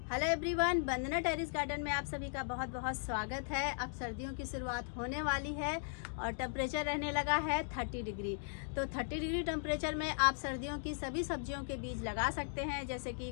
Hello everyone, वंदना terrace garden में आप सभी का बहुत बहुत स्वागत है। अब सर्दियों की शुरुआत होने वाली है और टेम्परेचर रहने लगा है 30 डिग्री। तो 30 डिग्री टेम्परेचर में आप सर्दियों की सभी सब्जियों के बीज लगा सकते हैं, जैसे कि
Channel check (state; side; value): silent; right; digital silence